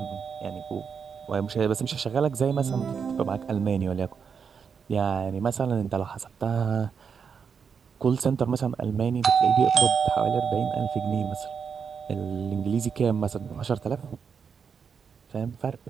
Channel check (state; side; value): quieter; left; 6.4 dB